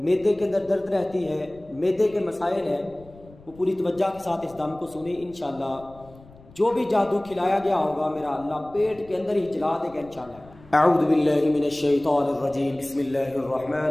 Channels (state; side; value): noise; left; rumble, 23 dB below the sound